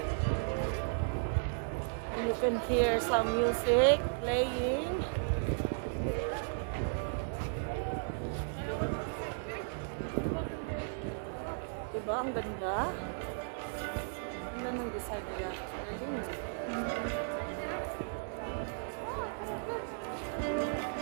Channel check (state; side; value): silent; left; digital silence